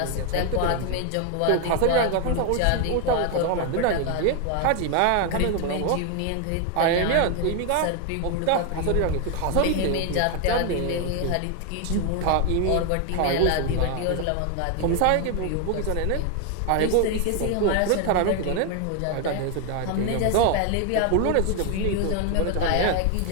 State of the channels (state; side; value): different; both; correlation 0.01